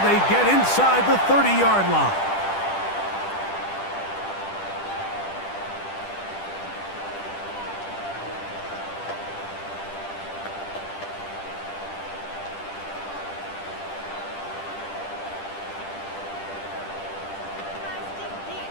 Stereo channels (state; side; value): late; right; 10 ms